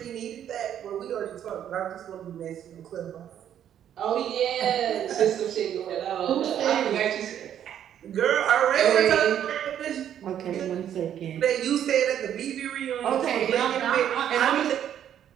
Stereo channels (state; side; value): quieter; left; 10.0 dB